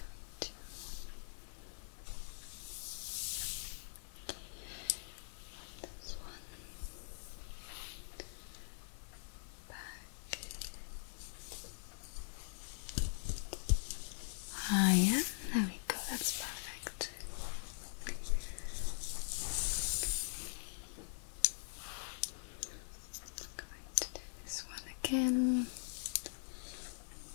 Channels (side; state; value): right; silent; digital silence